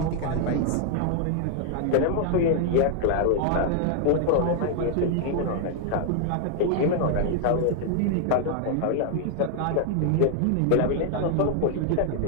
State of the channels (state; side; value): different; both; correlation 0.00